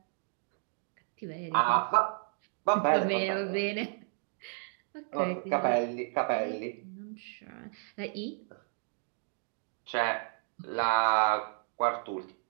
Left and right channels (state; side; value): silent; left; 56 dB below the other